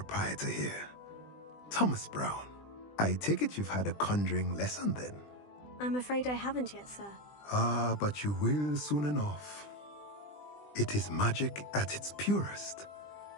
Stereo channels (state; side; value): late; right; 20 ms